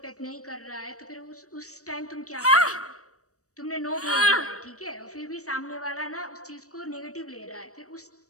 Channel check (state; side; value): late; right; 0.65 ms